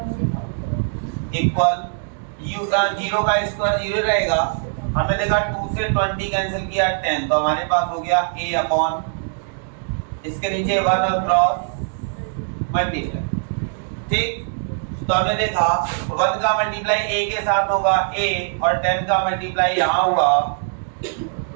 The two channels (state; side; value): silent; left; digital silence